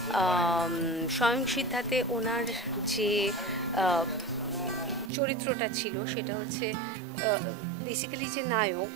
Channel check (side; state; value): left; drops out; at 5.1 s